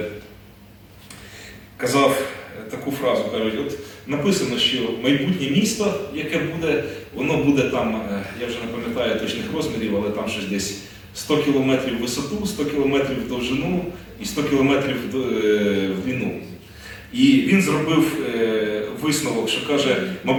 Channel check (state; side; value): identical; both; correlation 1.00